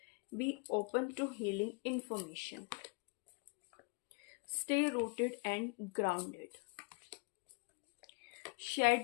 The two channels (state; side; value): quieter; right; 30.8 dB